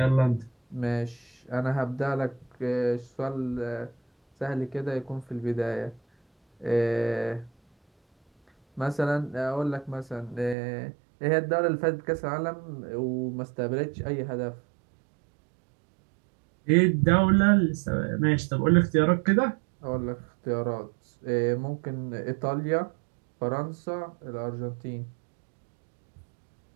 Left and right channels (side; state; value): left; drops out; at 10.6 s